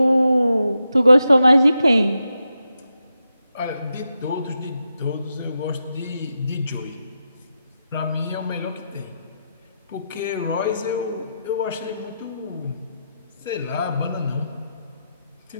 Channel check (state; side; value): inverted; both; correlation -0.86